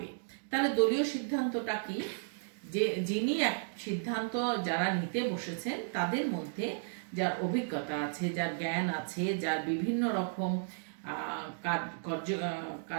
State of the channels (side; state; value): left; silent; digital silence